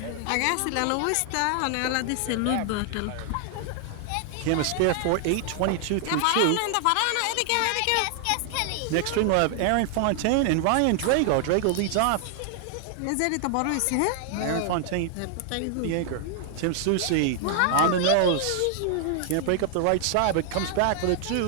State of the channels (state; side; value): different; both; correlation 0.00